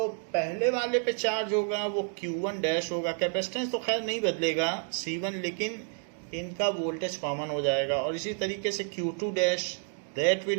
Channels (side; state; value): left; silent; 55 dB below the other